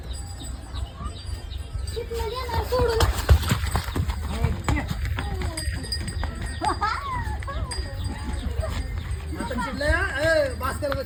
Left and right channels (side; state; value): both; identical; correlation 1.00